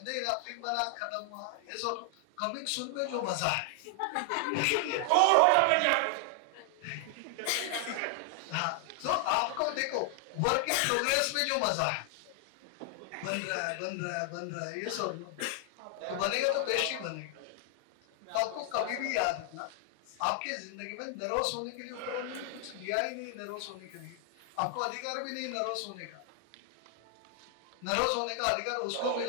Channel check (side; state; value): both; different; correlation 0.00